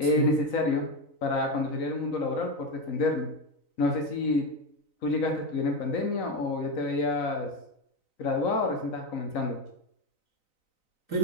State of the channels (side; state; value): right; late; 3.9 ms